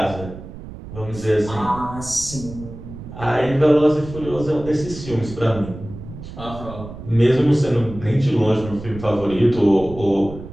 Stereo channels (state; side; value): noise; right; rumble, 13 dB below the sound